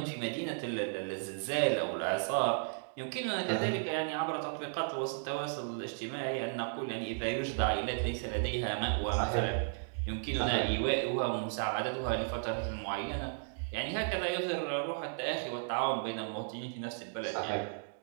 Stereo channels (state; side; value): silent; left; digital silence